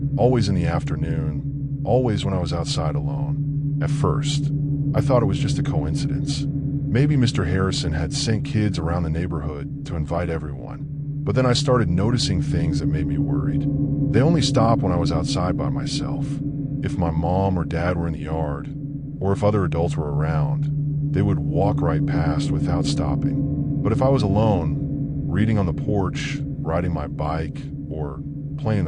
always in the afternoon, always when I was outside alone. At first, I thought it was just a coincidence. Maybe Mr. Harrison had sent kids around the neighborhood to invite everyone. But then I started noticing things that made me worried. They only stopped when I was outside by myself. If my mom or dad were in the yard, or if other adults were around, they would walk right past without stopping. But if I was alone, reading on the porch, riding my bike, or playing in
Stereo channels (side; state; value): both; identical; correlation 1.00